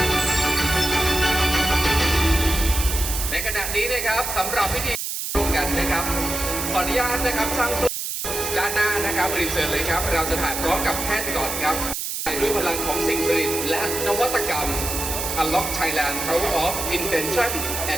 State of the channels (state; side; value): noise; right; hiss, 4 dB below the sound